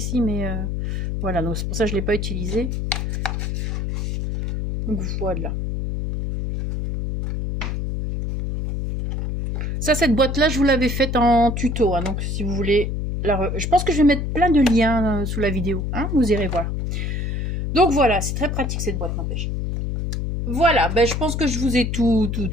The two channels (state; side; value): noise; left; hum, 1 dB below the sound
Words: mais voilà. Donc c'est pour ça que je ne l'ai pas utilisée. Donc voilà. Ça, cette boîte-là, je vous l'avais faite en tuto. Hein, donc si vous voulez... Je pense que je vais mettre plein de liens sous la vidéo. Hein, vous irez voir. Donc voilà, c'est très pratique cette boîte, n'empêche. Voilà, ben, je pense que je vous ai tout